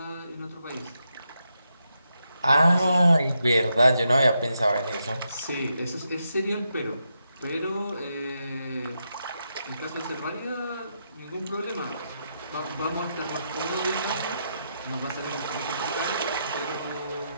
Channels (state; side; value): inverted; both; correlation -0.83